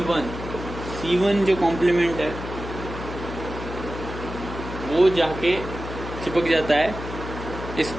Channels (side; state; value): left; noise; hum, 9 dB below the sound